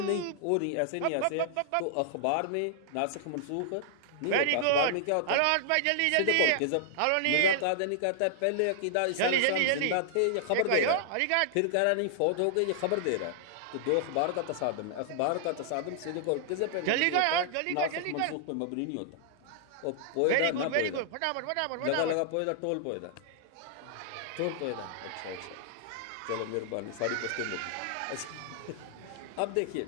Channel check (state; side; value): different; both; correlation -0.01